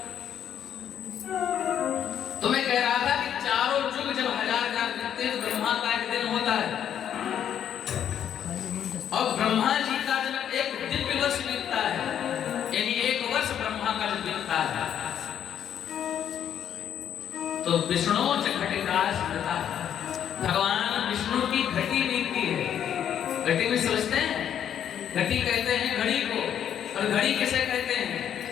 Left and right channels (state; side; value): quieter; right; 9.4 dB